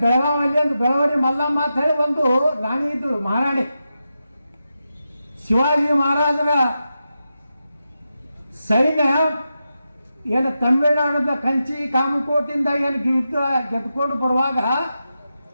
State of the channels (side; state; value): both; inverted; correlation -0.89